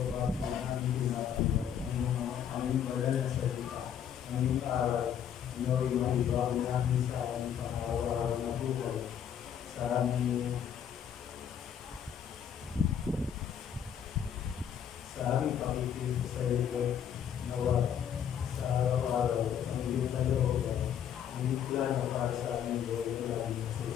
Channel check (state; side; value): quieter; right; 8.9 dB